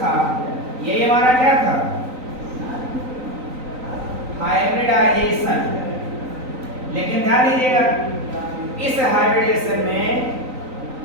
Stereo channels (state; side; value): late; left; 3.9 ms